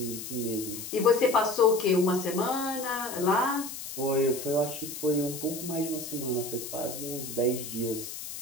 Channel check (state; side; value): noise; left; hiss, 9 dB below the sound